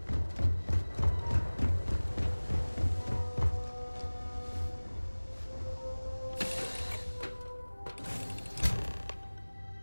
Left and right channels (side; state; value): both; inverted; correlation -1.00